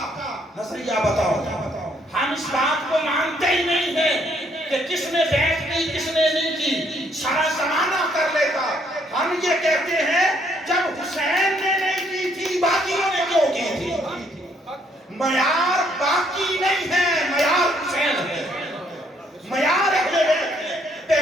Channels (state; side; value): normal; both; correlation 0.68